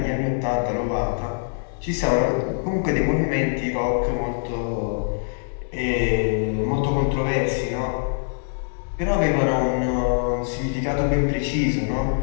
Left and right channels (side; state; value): right; silent; 63 dB below the other